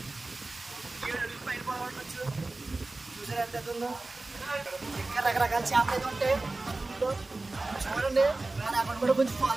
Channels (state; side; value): quieter; left; 3.1 dB